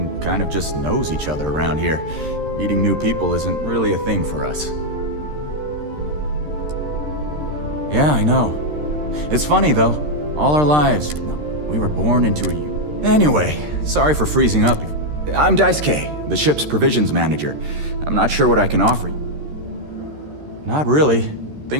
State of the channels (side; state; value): left; late; 13 ms